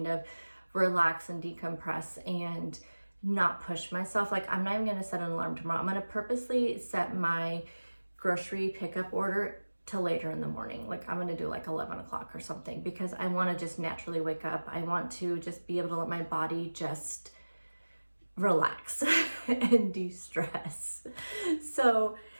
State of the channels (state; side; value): inverted; both; correlation -1.00